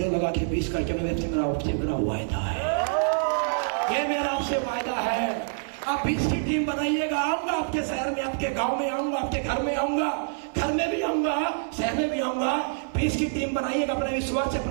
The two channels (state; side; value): silent; left; 58 dB below the other